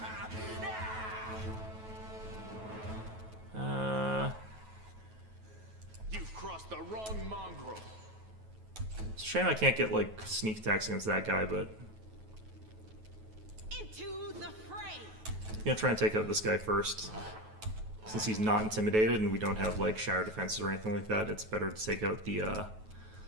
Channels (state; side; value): late; left; 9.3 ms